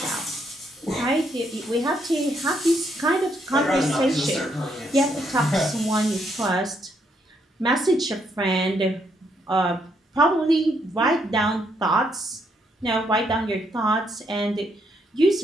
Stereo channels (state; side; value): normal; both; correlation 0.74